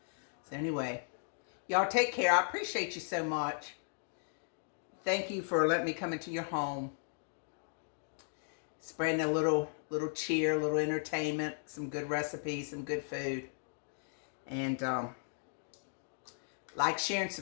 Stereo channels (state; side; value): silent; right; digital silence